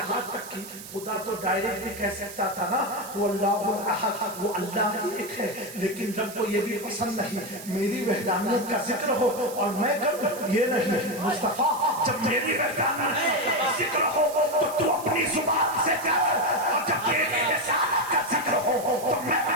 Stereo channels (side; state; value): right; noise; hiss, 14 dB below the sound